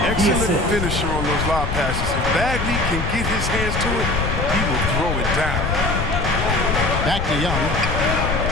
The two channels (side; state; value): left; noise; rumble, 4 dB below the sound